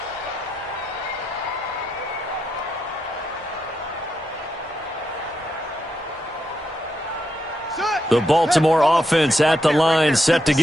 The Baltimore offense at the line, set to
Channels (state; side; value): normal; both; correlation 0.82